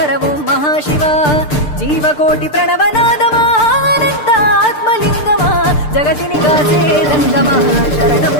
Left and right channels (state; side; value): late; right; 6.7 ms